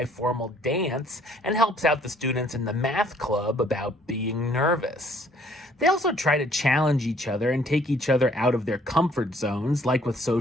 dance and helps out the students in the math club about being nervous. They also try to challenge each other and take each other out of their comfort zones, like with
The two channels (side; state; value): both; normal; correlation 0.61